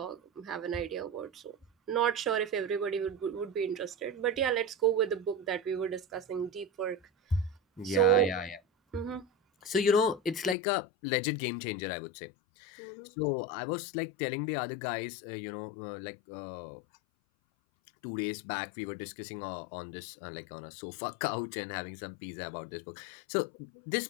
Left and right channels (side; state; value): right; drops out; at 10.6 s